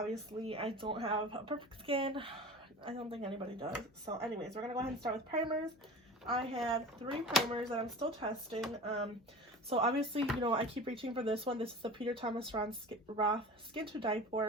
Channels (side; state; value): both; normal; correlation 0.35